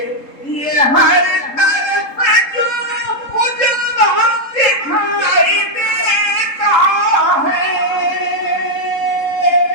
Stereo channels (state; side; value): late; right; 3.7 ms